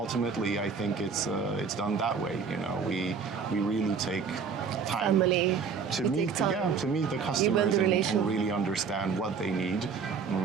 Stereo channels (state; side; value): quieter; left; 5.9 dB